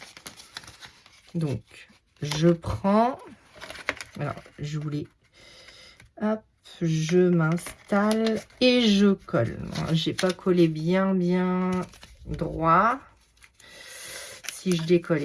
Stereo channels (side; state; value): both; identical; correlation 1.00